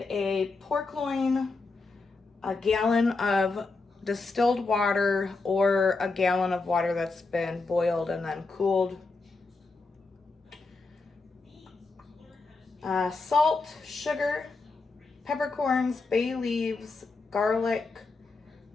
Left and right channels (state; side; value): quieter; right; 3.8 dB